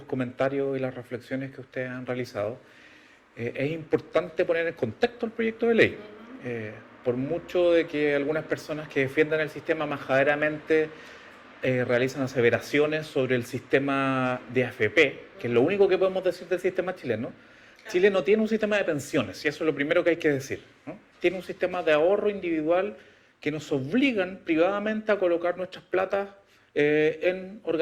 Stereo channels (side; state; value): both; identical; correlation 1.00